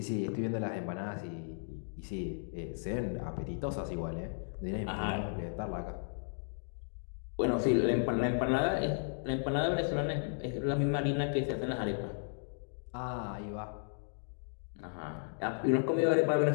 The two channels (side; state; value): right; silent; digital silence